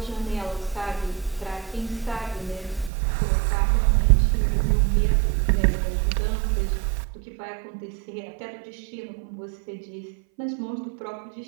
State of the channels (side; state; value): left; drops out; at 2.9 s